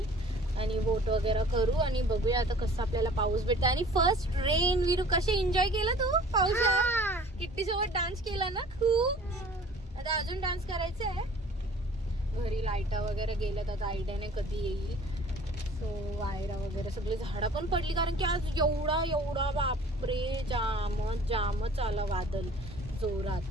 आणि वोट वगैरे करू आणि बघूया आता कसं आपल्याला पाऊस भेटतो. आणि फर्स्ट रेन. विरू कसे एन्जॉय केला तू पावसात? किट्टी सोबत डान्स केला ना खूप. आता अजून डान्स करायचा आहे. घरी लाईटा वगैरे गेल्यात, आता आयडिया नाही कधी येईल. सो वायरा वगैरे सगळी झाडं पण पडली कारण की आज एवढा बापरे जामच आला वादळ जोरात.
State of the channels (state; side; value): normal; both; correlation 0.49